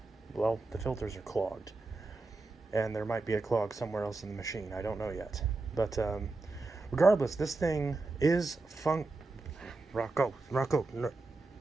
well, the filters are clogged. And there might be a clog somewhere else in the machine. I don't know yet. But regardless, this thing is Rocco, no.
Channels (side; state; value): left; quieter; 3.4 dB